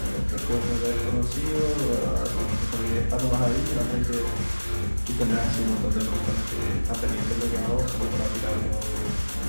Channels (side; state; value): both; inverted; correlation -1.00